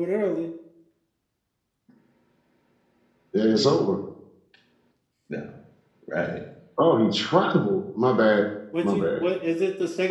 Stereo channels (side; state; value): both; identical; correlation 1.00